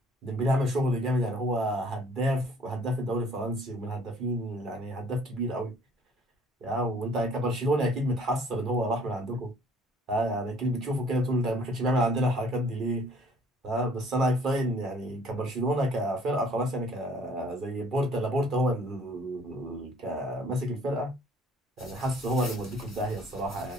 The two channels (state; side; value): normal; both; correlation 0.56